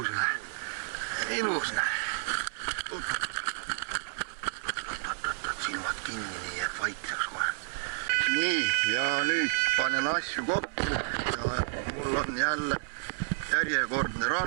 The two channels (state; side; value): silent; left; 57 dB below the other